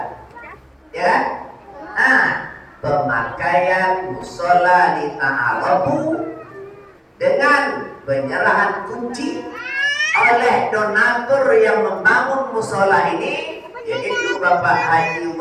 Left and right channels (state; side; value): identical; both; correlation 1.00